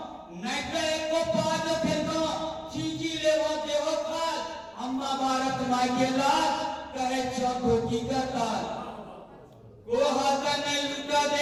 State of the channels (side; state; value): both; identical; correlation 1.00